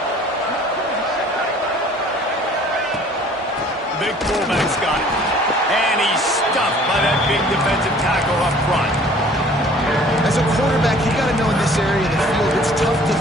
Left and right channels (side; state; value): both; normal; correlation 0.52